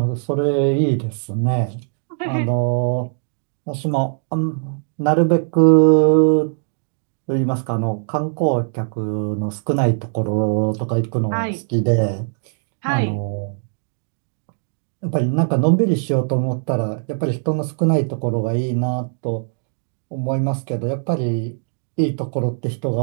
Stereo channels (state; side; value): silent; left; digital silence